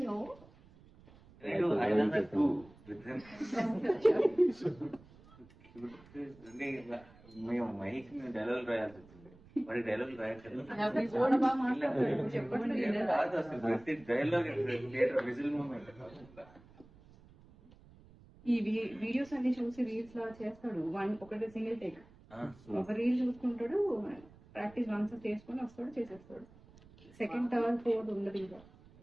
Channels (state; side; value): noise; right; rumble, 24 dB below the sound